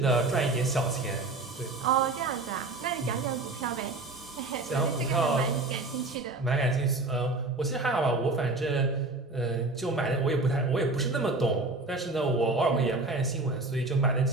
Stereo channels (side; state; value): left; quieter; 3.2 dB